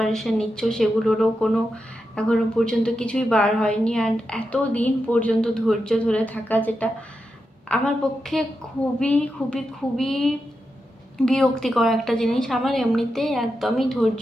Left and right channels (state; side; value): normal; both; correlation 0.88